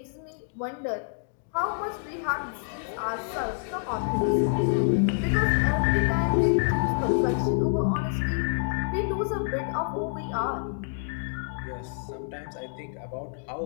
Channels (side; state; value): right; silent; digital silence